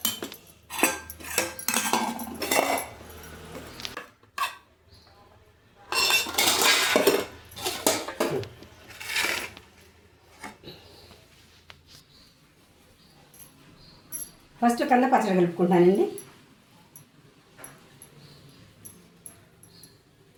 ఫస్ట్ కంద పచ్చడి కలుపుకుంటానండి.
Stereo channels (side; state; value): both; identical; correlation 1.00